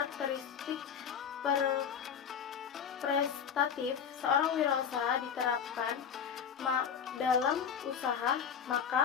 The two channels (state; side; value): quieter; right; 7.7 dB